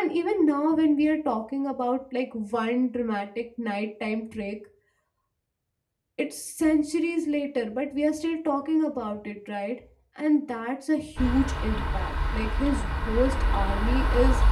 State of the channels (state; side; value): identical; both; correlation 1.00